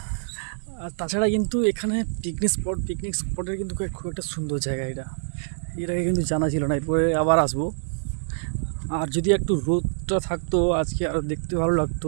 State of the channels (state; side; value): silent; left; digital silence